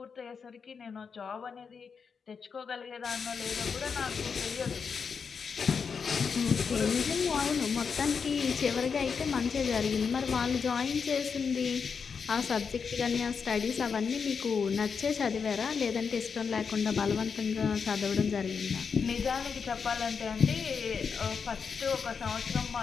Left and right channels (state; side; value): quieter; right; 5.9 dB